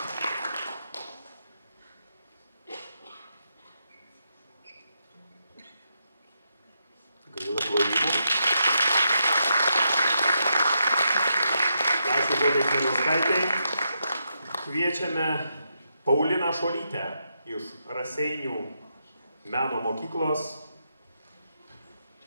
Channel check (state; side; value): inverted; both; correlation -0.82